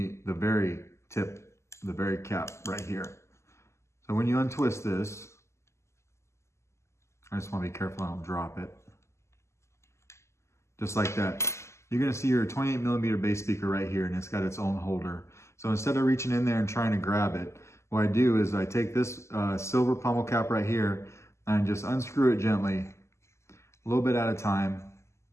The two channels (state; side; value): late; right; 0.13 ms